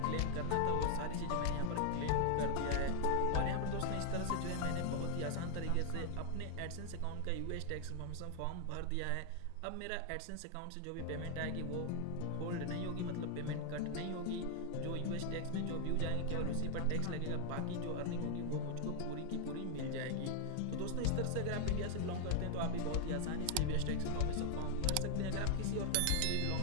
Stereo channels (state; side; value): different; both; correlation 0.00